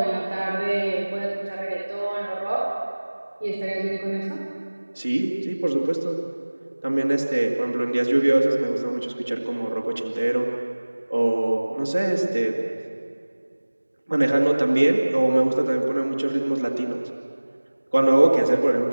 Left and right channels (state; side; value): inverted; both; correlation -1.00